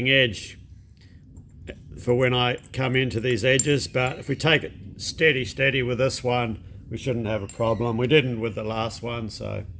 edge for when I come into these edges, but if we take it steady with this one, we shouldn't have a problem. We didn't with the last one, so.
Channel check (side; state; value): both; identical; correlation 1.00